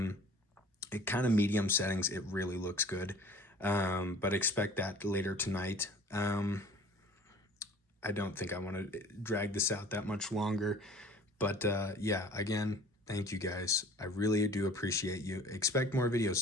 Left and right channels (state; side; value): normal; both; correlation 0.47